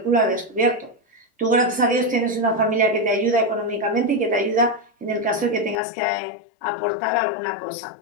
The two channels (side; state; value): right; drops out; at 5.8 s